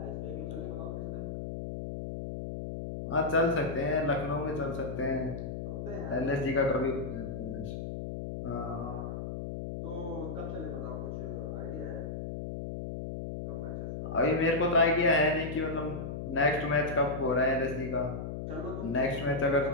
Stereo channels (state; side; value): noise; left; hum, 5 dB below the sound